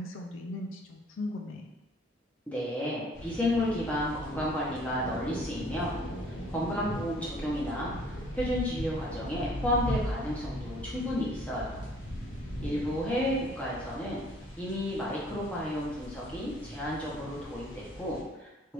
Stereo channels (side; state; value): both; normal; correlation 0.57